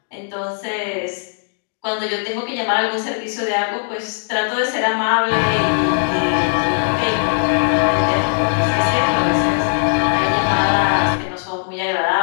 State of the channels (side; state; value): right; silent; digital silence